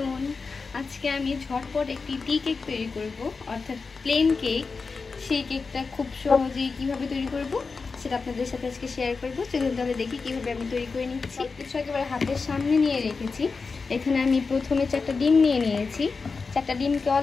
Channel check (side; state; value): right; quieter; 4.6 dB